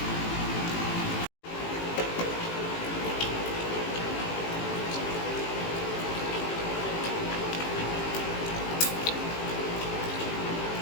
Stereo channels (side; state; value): right; late; 18 ms